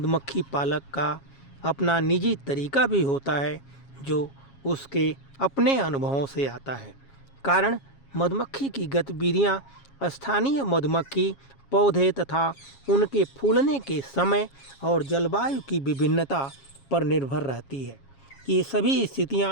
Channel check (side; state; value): right; late; 7.3 ms